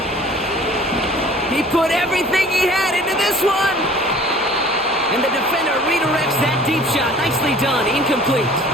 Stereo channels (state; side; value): normal; both; correlation 0.49